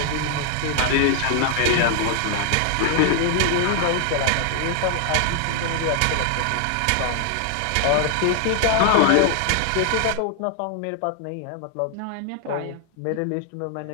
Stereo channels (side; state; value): both; different; correlation 0.00